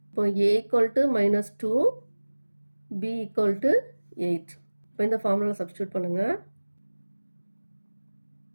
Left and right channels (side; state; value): both; inverted; correlation -1.00